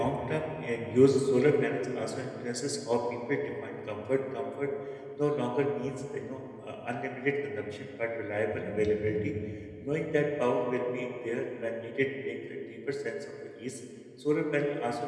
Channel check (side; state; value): both; identical; correlation 1.00